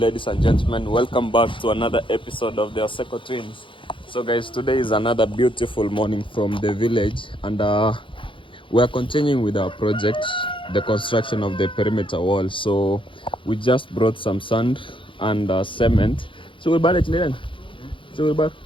and gentlemen. Welcome back to another episode of the Oseko Twins. So guys, today is another beautiful morning from the village, and we are continuing with our project, the construction of the perimeter wall. So we just brought some sand and cement. So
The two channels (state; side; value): late; right; 0.25 ms